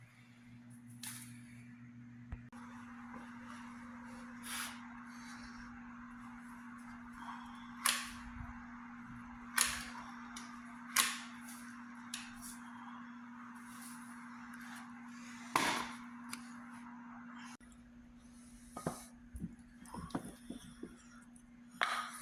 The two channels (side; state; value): both; identical; correlation 1.00